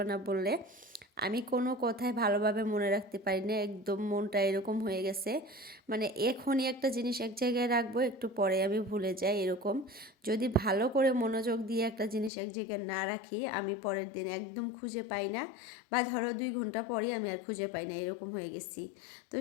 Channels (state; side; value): drops out; right; at 12.3 s